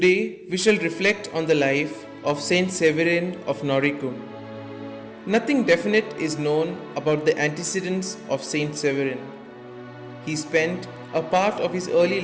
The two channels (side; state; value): both; identical; correlation 1.00